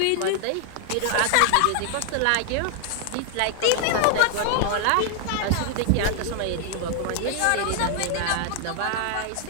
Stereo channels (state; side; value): different; both; correlation 0.00